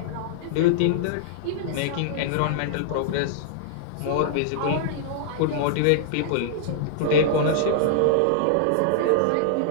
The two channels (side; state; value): both; different; correlation -0.01